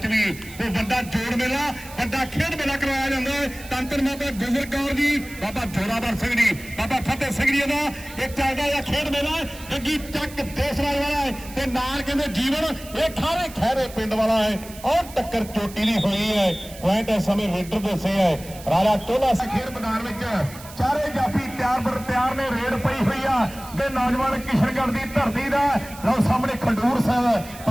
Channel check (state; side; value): noise; right; hiss, 17 dB below the sound